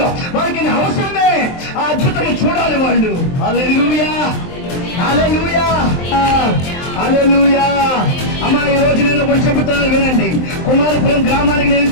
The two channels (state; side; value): late; right; 23 ms